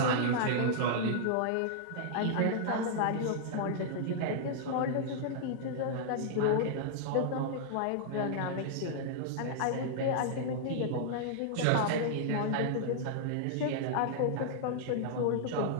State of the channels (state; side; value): different; both; correlation -0.01